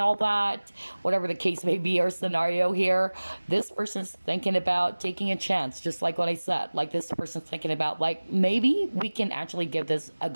that, whatever the case may be or scenario here, this person's thinking about taking a chance, just like what I said. Like, this person's thinking about, like, maybe we can actually give this a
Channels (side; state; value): both; inverted; correlation -1.00